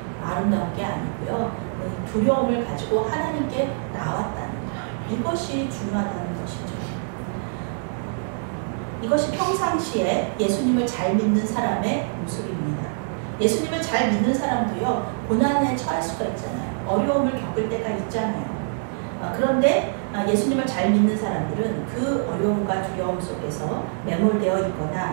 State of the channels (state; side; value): silent; left; digital silence